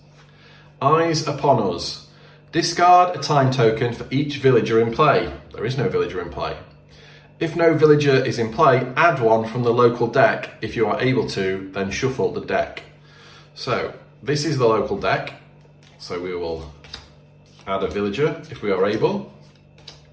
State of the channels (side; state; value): both; identical; correlation 1.00